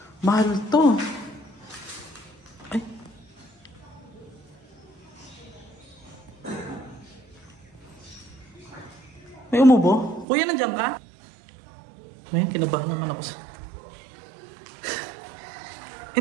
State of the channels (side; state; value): left; drops out; at 10.2 s